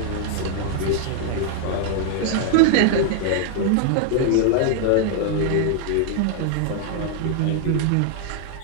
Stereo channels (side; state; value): both; different; correlation 0.00